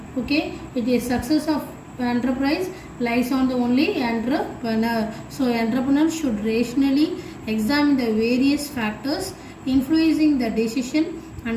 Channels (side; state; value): both; identical; correlation 1.00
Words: Okay, it is success of enterprise lies on the only entrepreneur. So entrepreneur should rationally examine the various factors influencing the decision